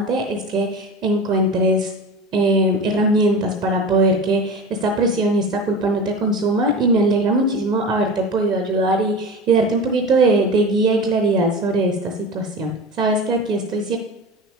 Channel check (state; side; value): normal; both; correlation 0.30